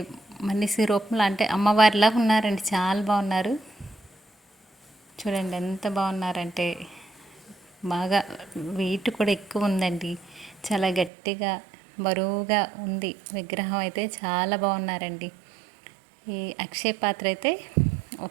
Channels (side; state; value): left; drops out; at 11.1 s